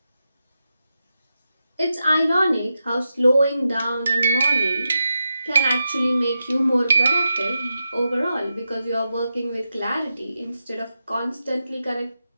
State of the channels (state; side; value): inverted; both; correlation -0.88